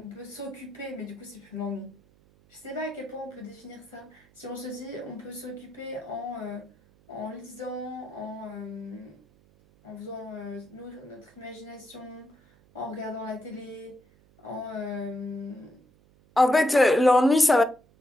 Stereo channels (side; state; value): right; noise; hum, 29 dB below the sound